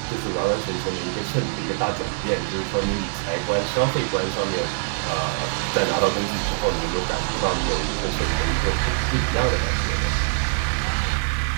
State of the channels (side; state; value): left; silent; 56 dB below the other